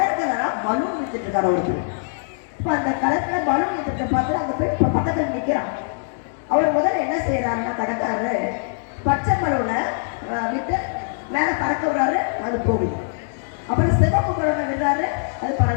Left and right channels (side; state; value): right; silent; digital silence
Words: பலூன் வித்துட்டு இருக்காரு ஒருத்தர். இப்போ அந்த கடற்கரை பலூன் வித்துட்டு பார்த்து அந்த போய் இப்போ பக்கத்தில் நிற்கிறான். அவர் முதல்ல என்ன செய்யறாருன்னா, கடைக்காரரு பச்சை பலூனை விட்டு மேலே பறக்க விடுறாரு, அது போகுது. அப்புறம் சிவப்பு பலூனை விடுறாரு, அது